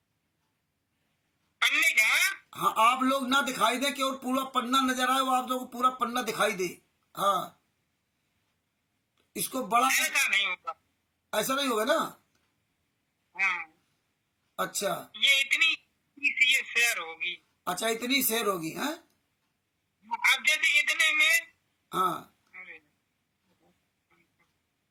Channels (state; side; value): identical; both; correlation 1.00